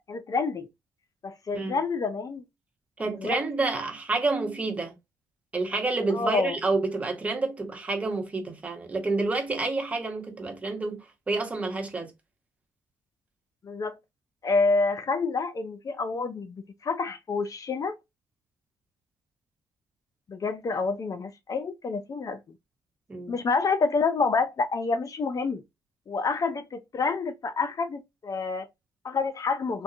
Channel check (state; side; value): normal; both; correlation 0.65